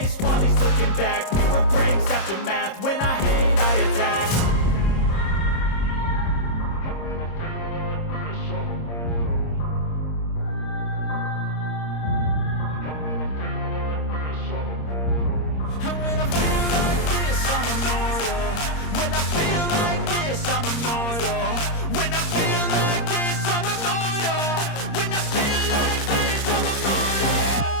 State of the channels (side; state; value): right; late; 26 ms